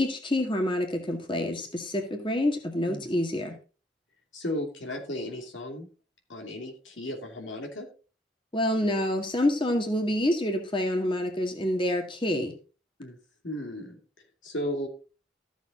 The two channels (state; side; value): normal; both; correlation 0.67